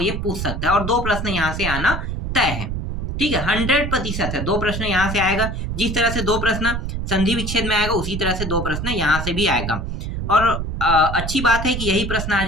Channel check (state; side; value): noise; right; rumble, 4 dB below the sound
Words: ये पूछ सकता है, और दो प्रश्न यहाँ से आना तय है। ठीक है, 100% है, दो प्रश्न यहाँ से आएगा। जिस तरह से दो प्रश्न संधि विच्छेद में आएगा उसी तरह से दो प्रश्न यहाँ से भी आएगा। और अच्छी बात है कि यही प्रश्न आ